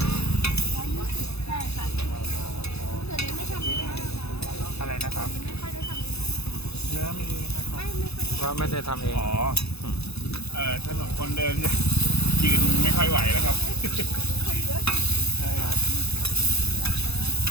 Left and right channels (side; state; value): right; late; 0.79 ms